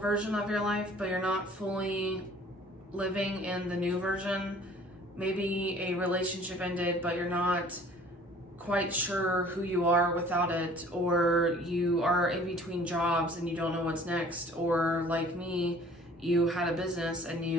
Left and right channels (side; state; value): both; normal; correlation 0.51